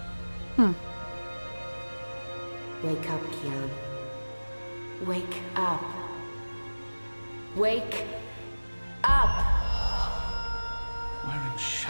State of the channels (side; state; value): both; inverted; correlation -1.00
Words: Wake up, Kian. Wake up. Wake up! Where in